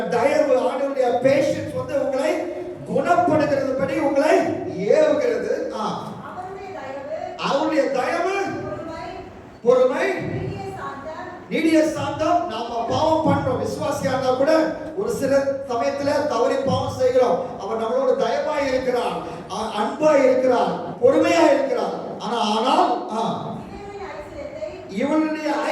தயவு, ஆண்டவருடைய பேஷன்ஸ் வந்து உங்களை குணப்படுகிறது படி உங்களை ஏவுகிறது. அவருடைய தயவு, பொறுமை, நீடிய சாந்தம். நாம பாவம் பண்றோம், விசுவாசியா இருந்தா கூட ஒரு சில சமயத்துல தவறி பாவம் செய்கிறோம். அவர் நம்மளோட தயவாய் இருக்கிறார், அன்பாய் இருக்கிறார், பொறுமையா இருக்கிறார். ஆனால் இவனுடைய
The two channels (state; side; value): identical; both; correlation 1.00